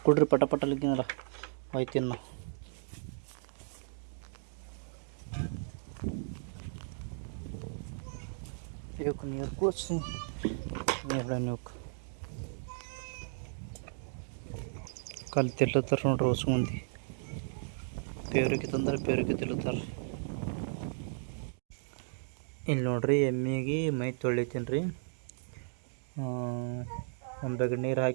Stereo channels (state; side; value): silent; left; digital silence